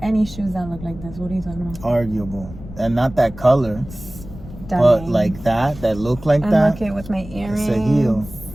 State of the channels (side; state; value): left; noise; rumble, 15 dB below the sound